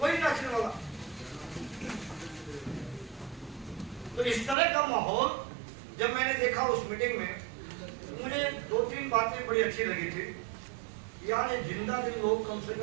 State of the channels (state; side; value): drops out; left; at 4.5 s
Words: नाचने वाला। तो इस तरह का माहौल जब मैंने देखा उस मीटिंग में, मुझे 2-3 बातें बड़ी अच्छी लगी थी। यार ये जिंदा दिल लोग कम से